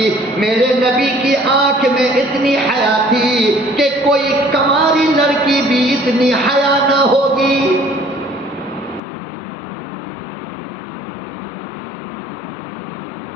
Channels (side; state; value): right; drops out; at 9.0 s